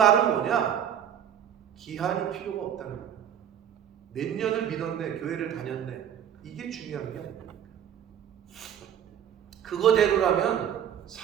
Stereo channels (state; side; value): quieter; left; 9.4 dB